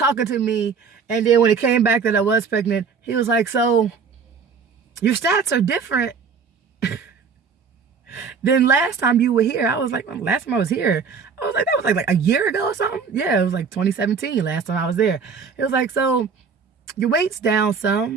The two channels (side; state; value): left; quieter; 5.8 dB